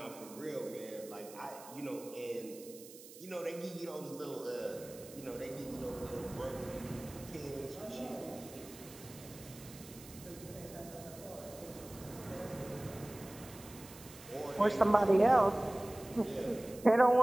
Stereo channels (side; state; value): right; noise; hiss, 17 dB below the sound